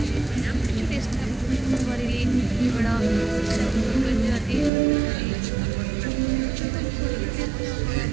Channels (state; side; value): drops out; left; at 4.7 s